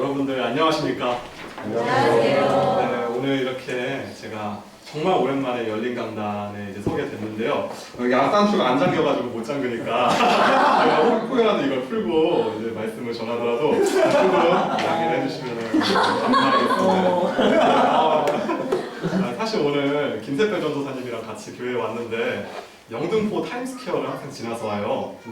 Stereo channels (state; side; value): identical; both; correlation 1.00